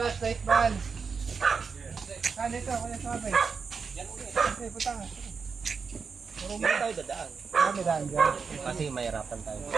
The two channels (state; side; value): quieter; left; 5.4 dB